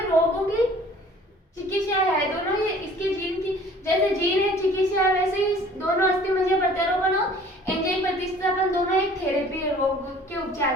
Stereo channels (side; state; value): both; normal; correlation 0.50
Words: रोगों की चिकित्सा है। दोनों ही इसके जीन की, जैसे जीन है चिकित्सा है, वैसे ही दोनों अस्थि मज्जा प्रत्यारोपण और एंजाइम प्रतिस्थापन दोनों एक थेरेपी है रोग के उपचार